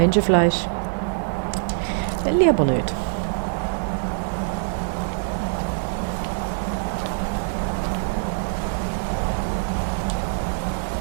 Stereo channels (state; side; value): silent; left; digital silence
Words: Will ich aber nicht.